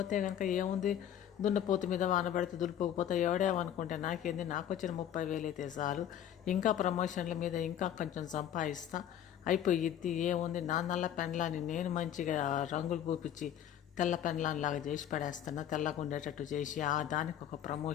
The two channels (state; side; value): quieter; right; 10.4 dB